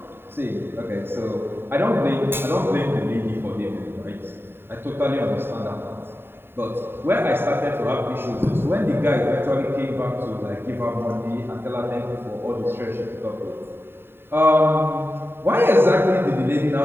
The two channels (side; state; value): left; late; 0.11 ms